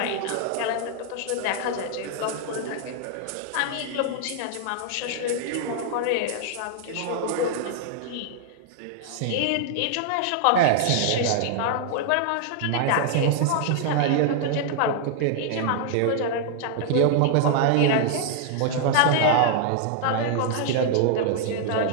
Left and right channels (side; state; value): both; different; correlation 0.00